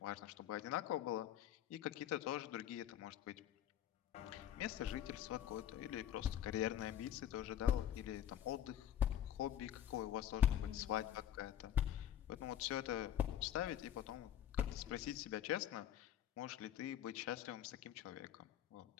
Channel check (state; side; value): quieter; right; 10.9 dB